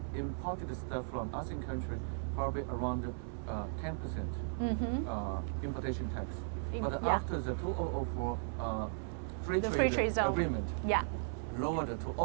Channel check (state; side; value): silent; left; 53 dB below the other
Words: stuff from ASEAN country probably around 10% importation tax. But after the 2004 free trade zone agreement, lowered to